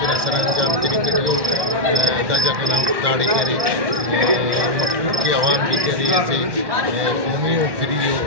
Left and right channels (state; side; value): late; left; 1.1 ms